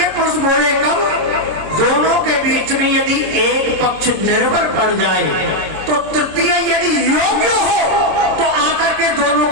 पुरुष बोले कब? दोनों के बीच में यदि एक पक्ष निर्बल पड़ जाए तो तृतीय यदि योग्य हो तो आकर के दोनों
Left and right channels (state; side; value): late; left; 26 ms